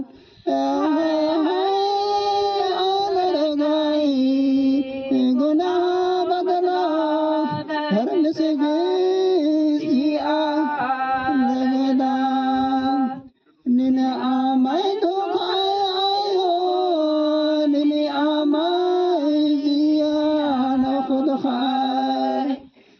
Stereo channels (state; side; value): identical; both; correlation 1.00